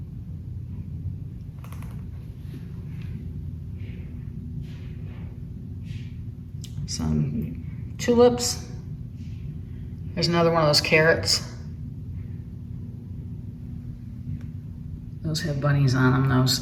Some tulips. There's another one of those carrots. Those have bunnies on them, those.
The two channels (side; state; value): both; identical; correlation 1.00